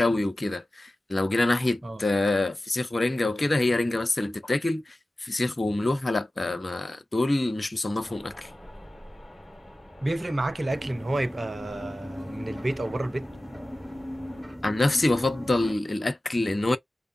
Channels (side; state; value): both; normal; correlation 0.96